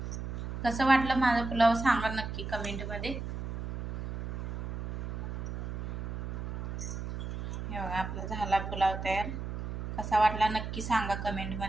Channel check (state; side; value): noise; right; hum, 5 dB below the sound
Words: कसं वाटलं माझा पुलाव सांगा नक्की कमेंटमध्ये. हे बघा आपला झाला पुलाव तयार. कसा वाटला नक्की सांगा